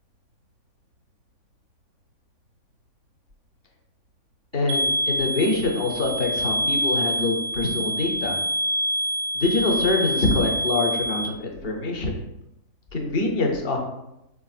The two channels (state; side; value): late; left; 3.5 ms